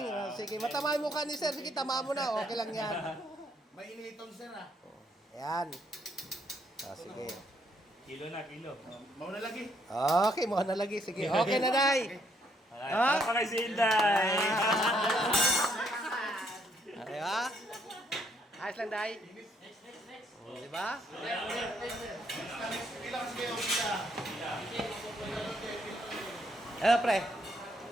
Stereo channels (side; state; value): both; normal; correlation 0.71